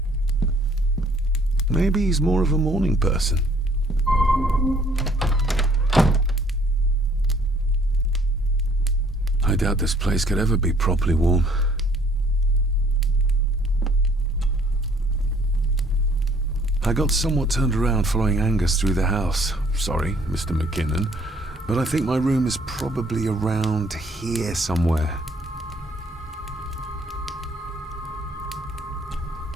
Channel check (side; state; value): both; normal; correlation 0.60